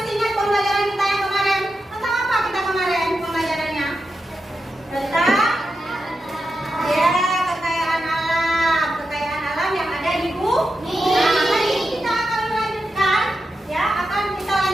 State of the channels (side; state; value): both; normal; correlation 0.89